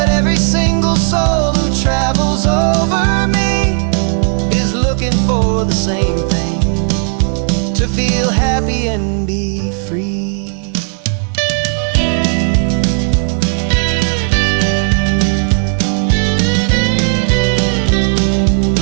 every single soul who travels over me is looking for the same thing, to feel happy and be free.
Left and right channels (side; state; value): left; silent; 57 dB below the other